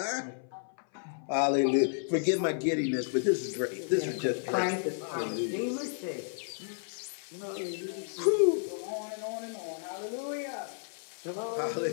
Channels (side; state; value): right; silent; 56 dB below the other